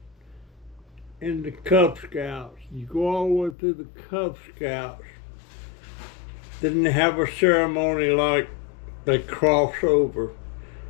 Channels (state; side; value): drops out; right; at 3.6 s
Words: in the Cub Scouts. You go all the way through the Cub Scouts. Then they have a ceremony like they cross over